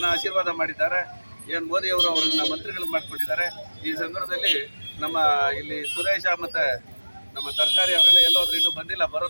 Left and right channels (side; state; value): both; inverted; correlation -1.00